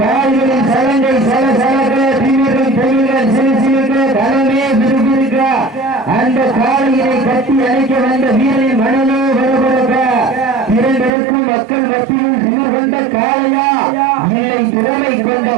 கால்களின் சலங்கை சல சலக்க தீவிரம் தொழில்கள் சிறுசிறுக்க களமே விறுவிறுக்க அந்த காலையினை கட்டி அழைக்க வந்த வீரரின் மனநோ வரவழக்க இரண்டருக்கும் மக்கள் மத்தியில் திமிர் கொண்ட காளையா இல்லை திறமை கொண்ட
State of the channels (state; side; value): drops out; left; at 11.1 s